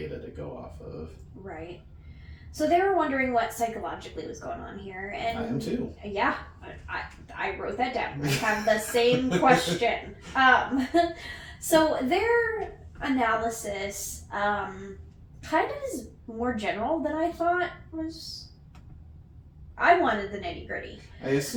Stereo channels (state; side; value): identical; both; correlation 1.00